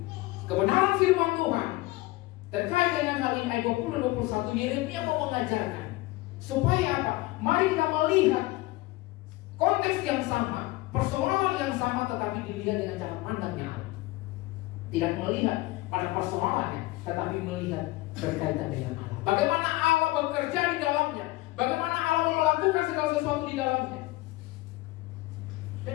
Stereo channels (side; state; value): right; quieter; 19.9 dB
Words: kebenaran firman Tuhan terkait dengan hal ini ayat 20-21 Yeremia mau mengajarkan supaya apa? Mari kita melihat konteks yang sama, persoalan yang sama, tetapi dilihat dengan cara pandangnya Allah. Tidak melihat pada persoalannya, tetapi melihat berkaitan dengan Allah. Bagaimana Allah bekerja di dalamnya, bagaimana Allah melakukan segala sesuatu di dalamnya.